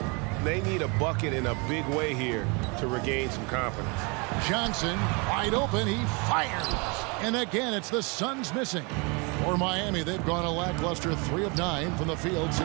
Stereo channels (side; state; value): left; quieter; 30.9 dB